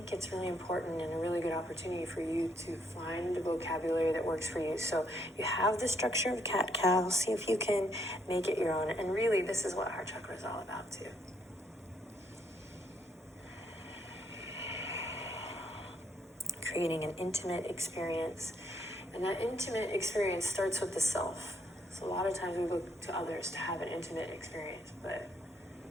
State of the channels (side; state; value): both; normal; correlation 0.72